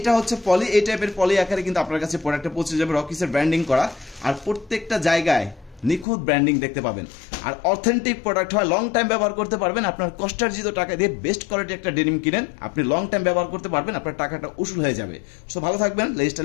হচ্ছে পলি, এই টাইপের পলি আকারে কিন্তু আপনার কাছে প্রোডাক্টটা পৌঁছে যাবে, রকিসের ব্র্যান্ডিং করা। আর প্রত্যেকটা জায়গায় নিখুঁত ব্র্যান্ডিং দেখতে পাবেন। আর অথেন্টিক প্রোডাক্ট হয়, লং টাইম ব্যবহার করতে পারবেন। আপনার কষ্টার্জিত টাকা দিয়ে বেস্ট কোয়ালিটি একটা ডেনিম কিনেন, আপনি লং টাইম ব্যবহার করতে পারবেন, আপনার টাকাটা উসুল হয়ে যাবে। সো ভালো থাকবেন,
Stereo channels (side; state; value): right; drops out; at 6.1 s